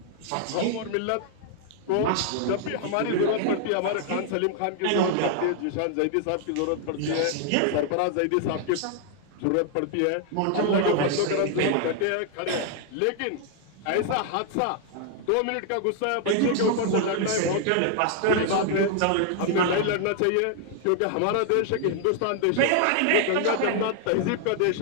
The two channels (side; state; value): both; different; correlation 0.00